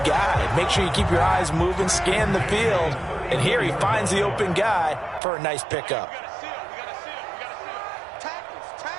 guy. Make sure you keep your eyes moving, scan the field. And here he finds the open guy for a nice pickup.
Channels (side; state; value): left; drops out; at 5.2 s